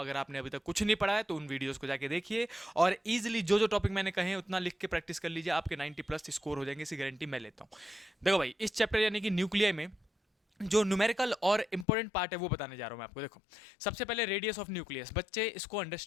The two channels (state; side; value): drops out; right; at 11.9 s